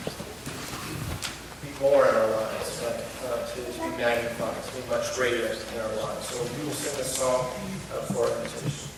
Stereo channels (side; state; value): both; identical; correlation 1.00